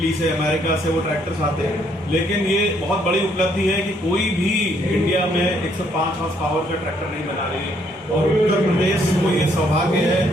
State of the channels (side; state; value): both; normal; correlation 0.69